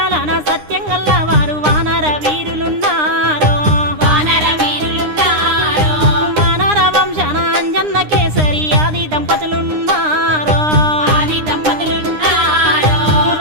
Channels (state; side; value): late; left; 9.8 ms